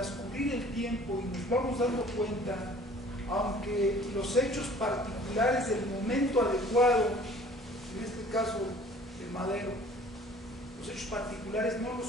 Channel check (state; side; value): normal; both; correlation 0.51